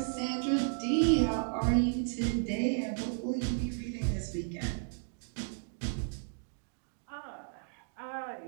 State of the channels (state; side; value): silent; left; digital silence